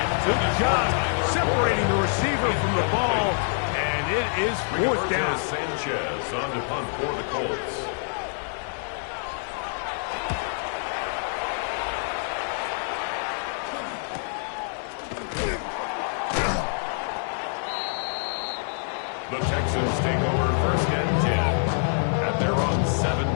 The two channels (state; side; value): silent; right; 59 dB below the other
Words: Good job separating the receiver from the ball, and it is fourth down. Sanchez on to punt for the Colts. The Texans take over first and 10 at their own